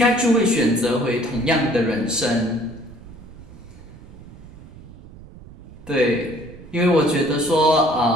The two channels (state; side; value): noise; right; rumble, 18 dB below the sound